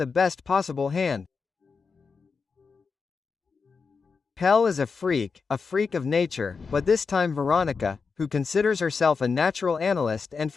best possible hand." Pell is a freak of nature, but this time Veronica, who considers herself a natural analyst and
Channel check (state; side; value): quieter; right; 5.1 dB